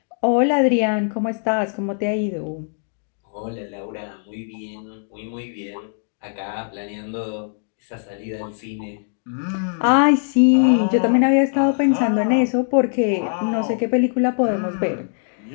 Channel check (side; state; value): right; silent; digital silence